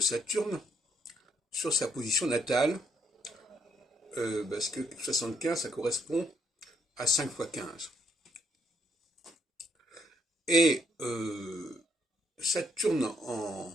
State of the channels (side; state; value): both; normal; correlation 0.72